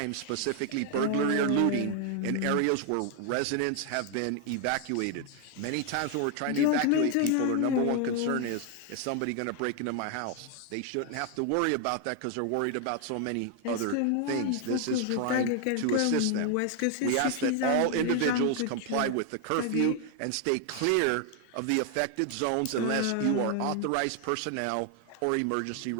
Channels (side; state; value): both; different; correlation 0.00